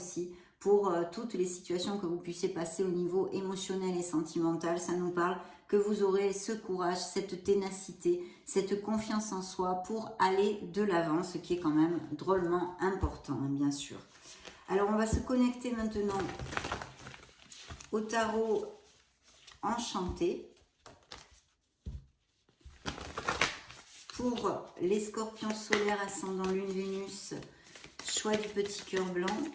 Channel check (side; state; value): both; identical; correlation 1.00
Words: pour toutes les situations que vous puissiez passer au niveau émotionnel et sentimental. Ça nous parle que vous aurez ce courage, cette ténacité, cette confiance en soi pour aller de l'avant, ce qui est quand même drôlement important, hein, bien sûr. Alors, on va se connecter maintenant au tarot enchanté pour les scorpions solaires ascendant lune Vénus, choix du petit cœur blanc.